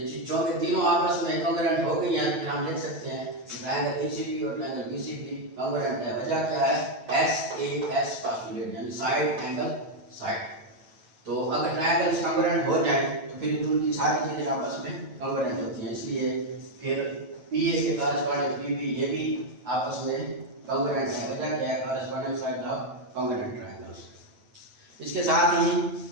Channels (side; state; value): left; late; 9.1 ms